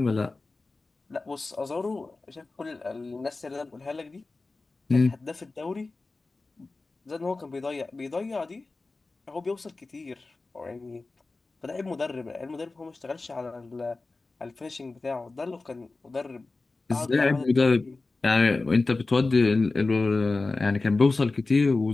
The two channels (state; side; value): quieter; right; 3.5 dB